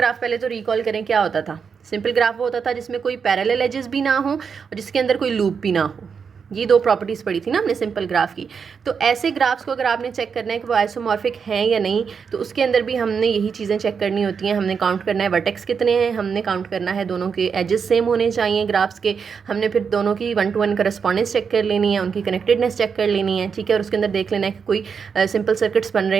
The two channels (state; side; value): quieter; left; 6.2 dB